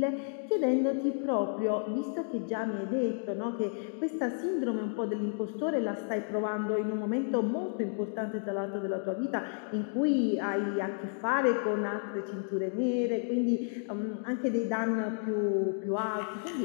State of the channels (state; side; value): silent; right; 57 dB below the other